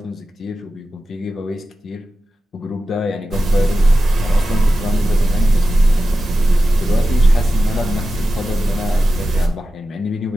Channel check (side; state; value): both; normal; correlation 0.93